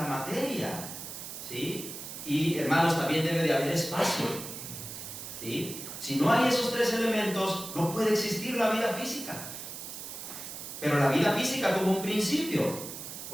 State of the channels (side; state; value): right; noise; hiss, 9 dB below the sound